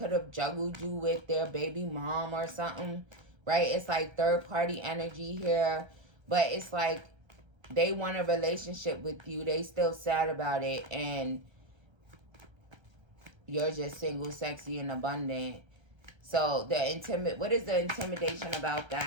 have juggled you with their baby mom or something. Right. It's like third party energy here. But it's like they want a relationship with you. They still sad about it. And you're just single, sexy, and abundant. So what is the intimidation about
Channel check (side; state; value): left; late; 1.3 ms